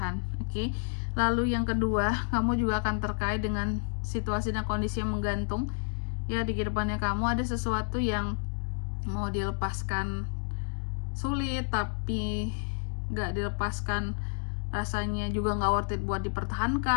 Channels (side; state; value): right; silent; digital silence